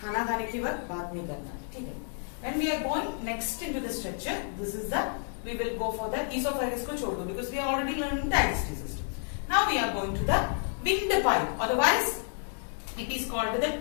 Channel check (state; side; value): silent; right; 56 dB below the other